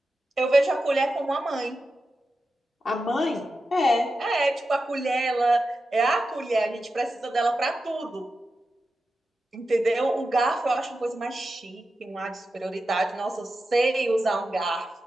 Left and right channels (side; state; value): both; normal; correlation 0.91